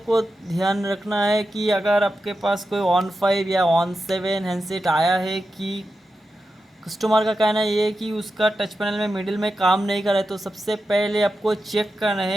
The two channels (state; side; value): normal; both; correlation 0.90